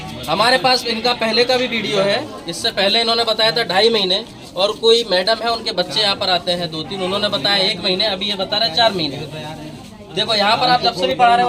हमारे पास इनका पहले का भी वीडियो है, इससे पहले इन्होंने बताया था 2.5 महीने, और कोई मैडम है उनके बच्चे यहाँ पर आते हैं 2-3, उन्होंने बताया 1 महीने, अभी ये बता रहे हैं 4 महीने। देखो यहाँ पर आप जब से भी पढ़ा रहे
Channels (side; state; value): both; identical; correlation 1.00